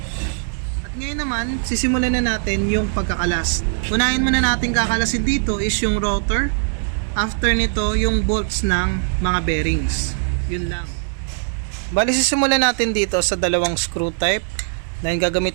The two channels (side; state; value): left; silent; digital silence